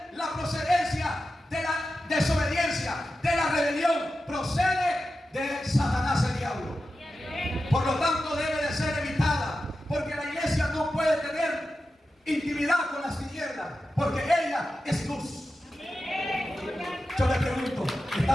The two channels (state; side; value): normal; both; correlation 0.92